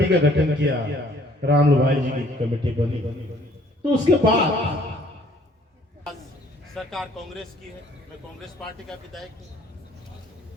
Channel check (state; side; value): normal; both; correlation 0.59